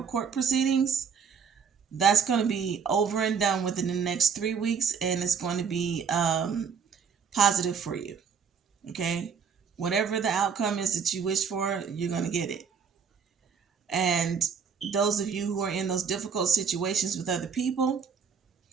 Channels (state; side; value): quieter; left; 6.4 dB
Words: court proceedings, that's going to be over and done within the next 3 weeks, and it's going to be positive for you. Okay? Whatever the outcome is that you wish for, you're going to get it. And those of you who are in those difficult situations with other people,